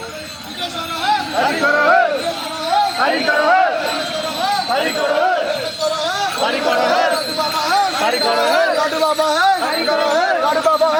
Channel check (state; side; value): identical; both; correlation 1.00